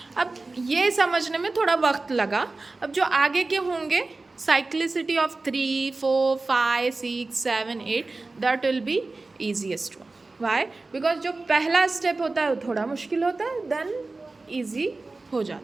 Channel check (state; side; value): quieter; left; 3.4 dB